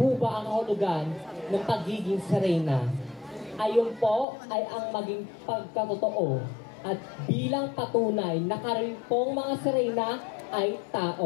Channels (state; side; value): drops out; right; at 4.2 s